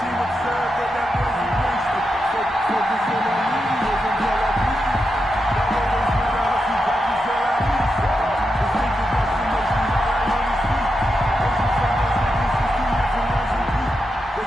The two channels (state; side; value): normal; both; correlation 0.87